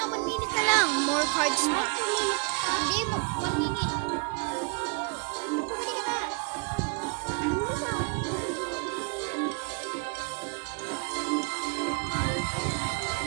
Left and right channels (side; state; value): left; quieter; 34.8 dB